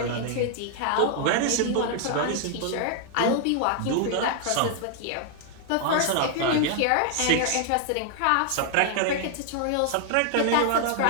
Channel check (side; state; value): both; different; correlation 0.00